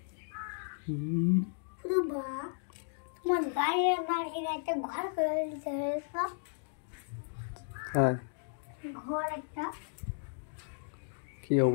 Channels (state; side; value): silent; right; digital silence